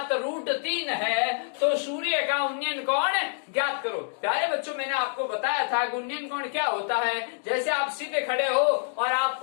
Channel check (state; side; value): silent; right; digital silence